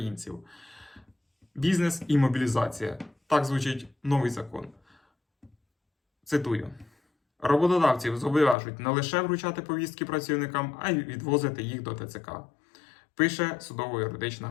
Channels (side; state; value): right; drops out; at 8.6 s